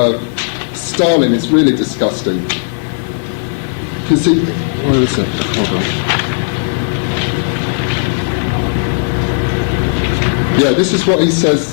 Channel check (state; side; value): silent; right; digital silence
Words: Stalin is really disgusting. Because where is it? Hold on. Yeah, this is what he